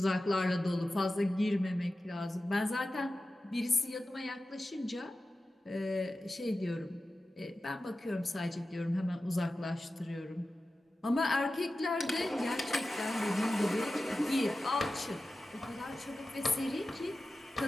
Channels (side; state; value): both; normal; correlation 0.94